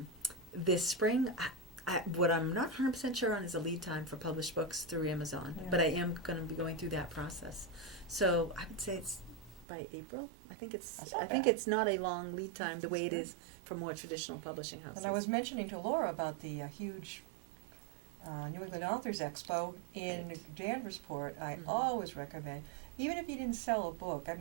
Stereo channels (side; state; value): left; drops out; at 9.7 s